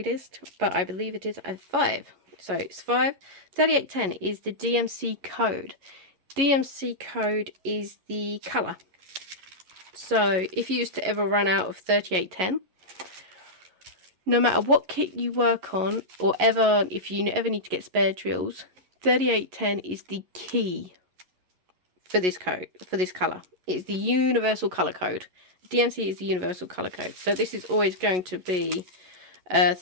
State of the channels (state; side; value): late; left; 11 ms